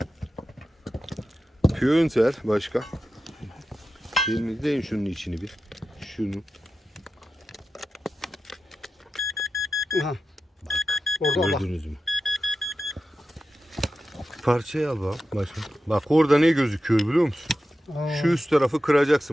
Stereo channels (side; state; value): both; normal; correlation 0.91